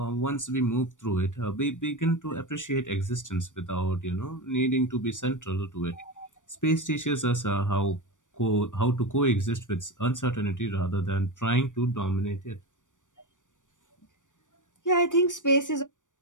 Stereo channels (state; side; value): late; right; 0.87 ms